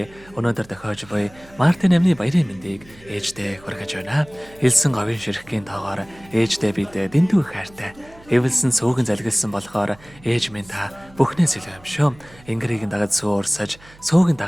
Өнөөдөр тохиож буй Мартин амны баярын мэндийг ээжтэй хүргэж байна. Хэлсэн говийн ширхгийн тоогоор ээжтэй бид дэндүү хайртай. Эвэлсэн сүүгэн залгилсан болохоор ээж минь та бүхнээс илүү юм шүү. Ингэрийг дагаж сүү урсаж, сүүгэн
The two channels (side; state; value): right; noise; hum, 24 dB below the sound